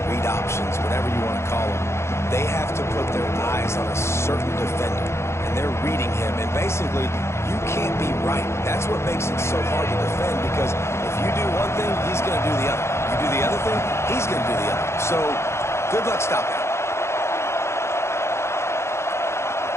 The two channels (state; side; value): late; right; 0.13 ms